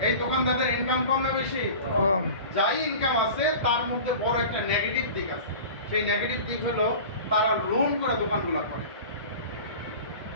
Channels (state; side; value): inverted; both; correlation -0.37